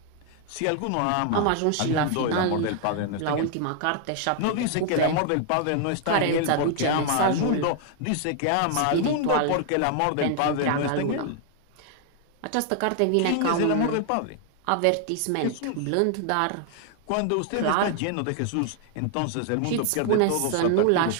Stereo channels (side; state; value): both; different; correlation 0.00